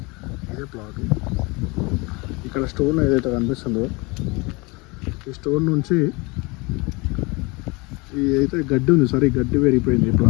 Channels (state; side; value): quieter; right; 26.4 dB